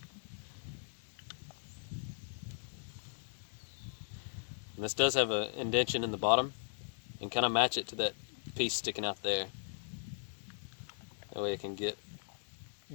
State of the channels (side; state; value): right; silent; digital silence